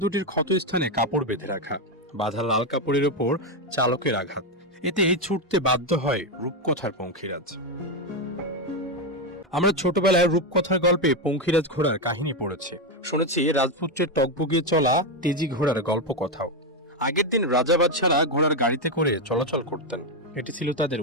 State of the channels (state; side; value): normal; both; correlation 0.07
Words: দুটির ক্ষতস্থানে কাপড় বেঁধে রাখা, বাঁধা লাল কাপড়ের ওপর চালকের আঘাত। এতে ছুটতে বাধ্য হয় রূপকথার পঙ্খিরাজ। আমরা ছোটবেলায় রূপকথার গল্পে পঙ্খিরাজ ঘোড়ার কাহিনী পড়েছি, শুনেছি রাজপুত্রের টকবগিয়ে চলা তেজি ঘোড়ার গল্প কথাও। আগের দিন রাজা বাদশারা ঘোড়ার গাড়িতে করে চলাচল করতেন, এটি ছিল তাদের